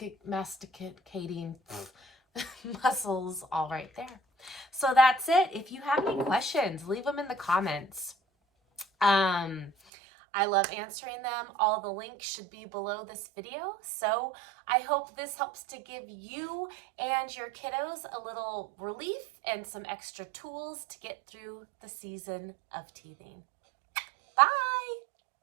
masticating muscles all right there. So that's it. If you have any questions, leave them in the comments. I love answering them. All the links should be below this video. So I hope this helps to give you and your kiddos a little relief and some extra tools to get through the season of teething.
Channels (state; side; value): drops out; left; at 9.7 s